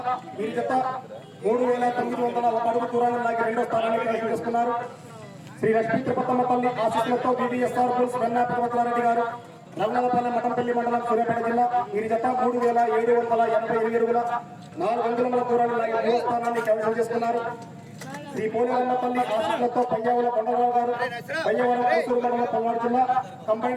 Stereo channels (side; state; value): both; identical; correlation 1.00